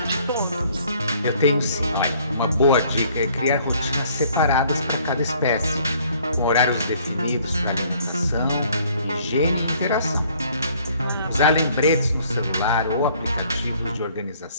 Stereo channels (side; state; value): both; inverted; correlation -0.60